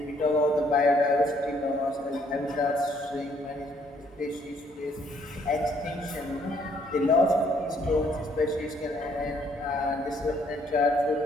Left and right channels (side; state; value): both; normal; correlation 0.66